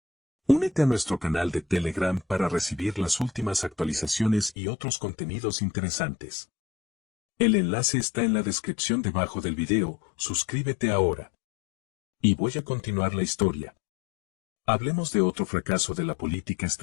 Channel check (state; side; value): drops out; right; at 4.5 s